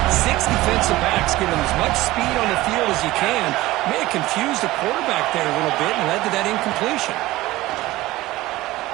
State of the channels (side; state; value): left; quieter; 17.9 dB